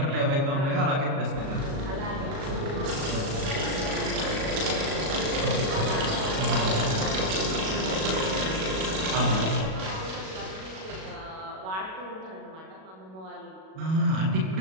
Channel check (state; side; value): late; left; 37 ms